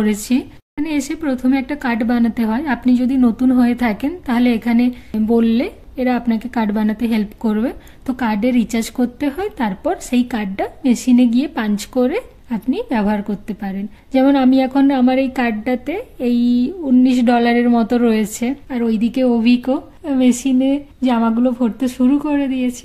এখানে এসে প্রথমে একটা কার্ড বানাতে হয়। আপনি যদি নতুন হয়ে থাকেন তাহলে এখানে বললে এরা আপনাকে কার্ড বানাতে হেল্প করবে। তো কার্ডে রিচার্জ করতে হয়, তারপর সেই কার্ডটা মেশিনে গিয়ে পাঞ্চ করে আপনি ব্যবহার করতে পারেন। যেমন আমি এখন আমার এই কার্ডটাতে এই $19 মতো রয়েছে। আর ওইদিকে অভিকও মেশিনে জামাগুলো ভরতে শুরু করে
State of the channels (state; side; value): identical; both; correlation 1.00